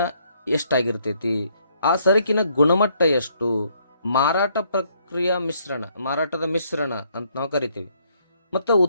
ಎಷ್ಟಾಗಿರ್ತೈತಿ, ಆ ಸರಕಿನ ಗುಣಮಟ್ಟ ಎಷ್ಟು, ಮಾರಾಟ ಪ್ರಕ್ರಿಯೆ ಮಾರಾಟದ ಮಿಶ್ರಣ ಅಂತ ನಾವು ಕರಿತೀವಿ. ಮತ್ತು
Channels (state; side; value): inverted; both; correlation -0.69